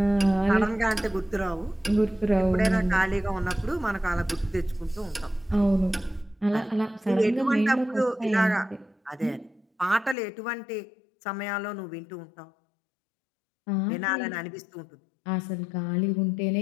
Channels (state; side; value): drops out; right; at 10.2 s